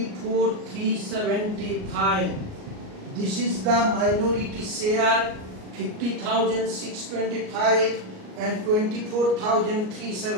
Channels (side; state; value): left; late; 38 ms